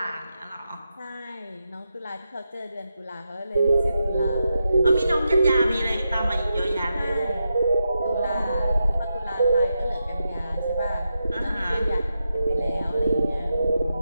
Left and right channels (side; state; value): both; inverted; correlation -0.87